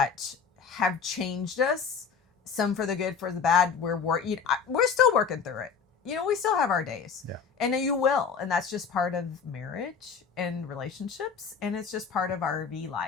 have changed us, some for the good, for the bad. We're still working through it. We still have our days, and you will. And that's just part of marriage and relationships. And it's just part of RV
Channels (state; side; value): quieter; right; 6.1 dB